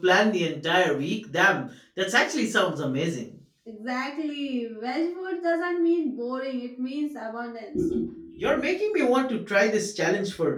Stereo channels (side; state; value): both; identical; correlation 1.00